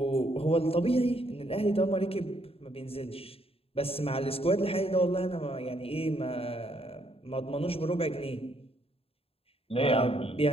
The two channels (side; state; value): right; late; 0.28 ms